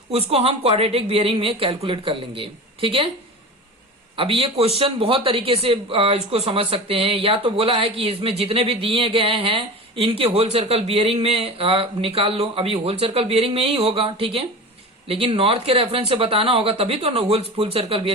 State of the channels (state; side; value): normal; both; correlation 0.31